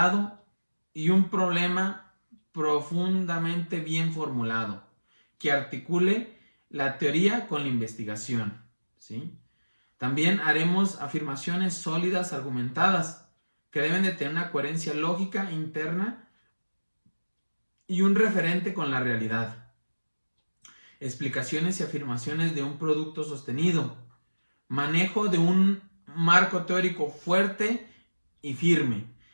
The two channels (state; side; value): inverted; both; correlation -1.00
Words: y un problema profundamente bien formulado que articule la teoría con la investigación, ¿sí? También haremos afirmaciones sólidas, argumentadas, que deben de tener una coherencia lógica interna y un referente con la realidad. Explicaciones y afirmaciones de un producto sostenido. Manejo de un marco teórico fuerte y firme,